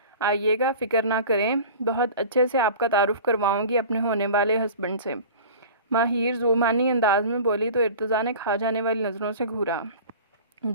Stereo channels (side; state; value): both; inverted; correlation -0.38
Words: آئیے گا، فکر نہ کریں، بہت اچھے سے آپ کا تعارف کرواؤں گی اپنے ہونے والے ہسبینڈ سے۔ ماہر زومانی انداز میں بولی تو ارتضیٰ نے کھا جانے والی نظروں سے گھورا۔